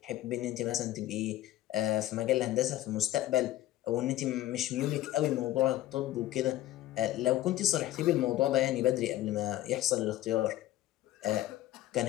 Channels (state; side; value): quieter; right; 14.5 dB